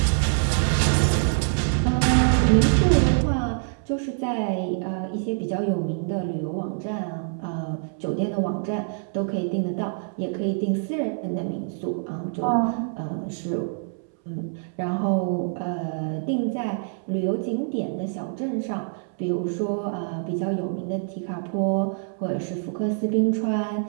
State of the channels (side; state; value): left; silent; 61 dB below the other